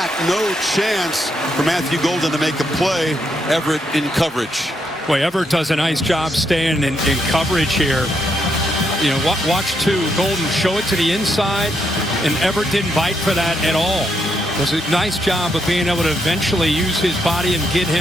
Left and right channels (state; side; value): normal; both; correlation 0.78